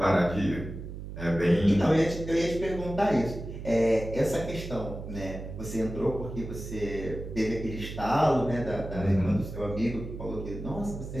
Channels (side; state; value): right; noise; hum, 9 dB below the sound